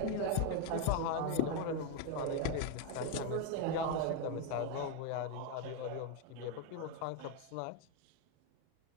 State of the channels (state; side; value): different; both; correlation 0.01